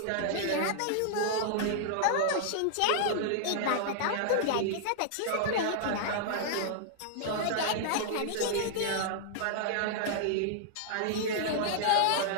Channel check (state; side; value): different; both; correlation -0.01